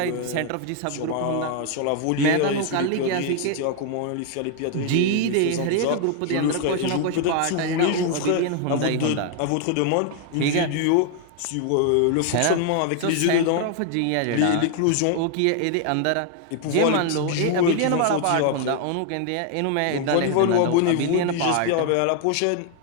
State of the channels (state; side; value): different; both; correlation 0.00